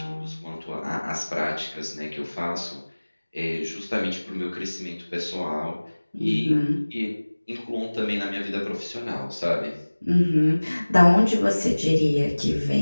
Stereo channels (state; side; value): inverted; both; correlation -1.00